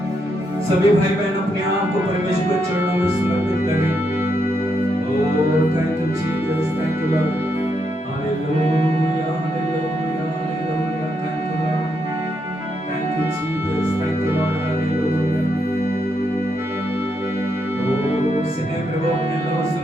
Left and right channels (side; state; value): both; normal; correlation 0.80